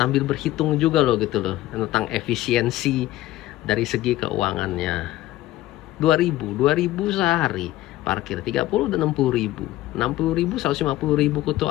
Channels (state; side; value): quieter; right; 15.8 dB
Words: berhitung juga loh gitu loh tentang efisiensi dari segi keuangannya. 2.000 sehari parkir 30 dan 60.000, 150.000